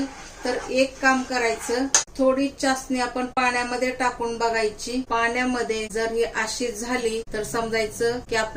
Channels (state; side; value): identical; both; correlation 1.00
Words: तर एक काम करायचं, थोडी चासणी आपण पाण्यामध्ये टाकून बघायची। पाण्यामध्ये जर ही अशी झाली तर समजायचं की